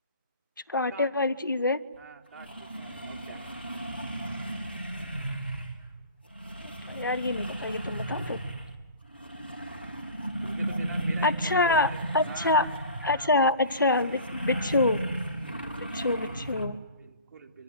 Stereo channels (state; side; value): inverted; both; correlation -0.42